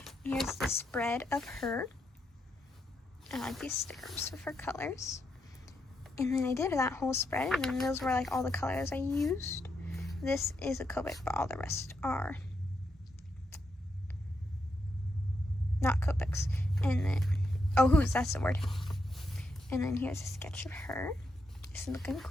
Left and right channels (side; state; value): both; normal; correlation 0.82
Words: Here's the spread of her. I like these stickers with her colors. And then I did that whole spread, and then those were like all the colors I used. This is a Copic, but all the rest are not Copics. And then, that's the word. And then here's a sketch of her. This is looking